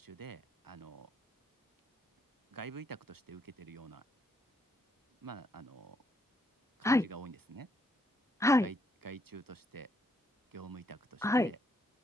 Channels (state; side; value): normal; both; correlation 0.74